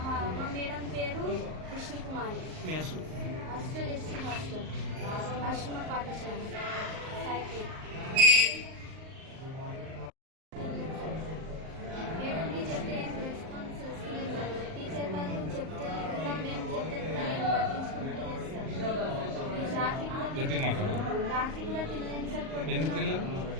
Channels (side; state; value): left; late; 38 ms